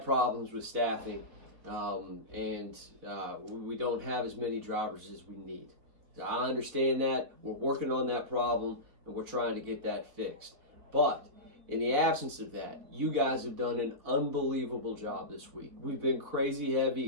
problems with staffing, and we don't have as many drivers as we need. So I understand that. We're working on that problem, and we're trying to get that fixed. But in the absence of that, you guys have done an unbelievable job this week. We've been crazy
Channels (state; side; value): late; left; 4.0 ms